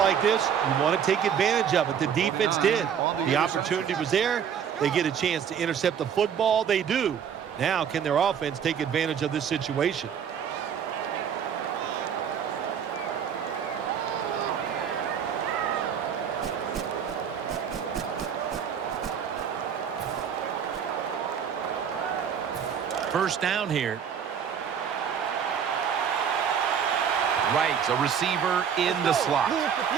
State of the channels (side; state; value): left; quieter; 7.9 dB